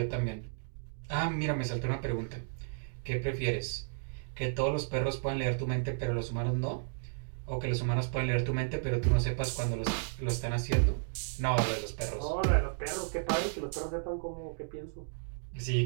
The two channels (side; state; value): left; silent; digital silence